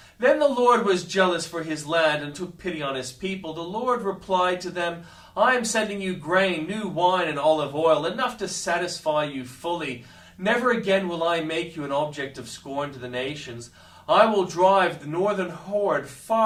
Then the Lord was jealous for his land and took pity on his people. The Lord replied to them, I am sending you grain, new wine, and olive oil, enough to satisfy you fully. Never again will I make you an object of scorn to the nations. I will drive the northern horde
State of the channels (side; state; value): both; identical; correlation 1.00